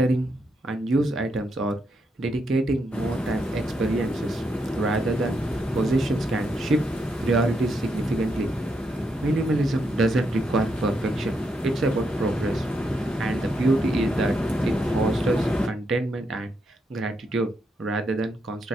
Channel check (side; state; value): both; normal; correlation 0.80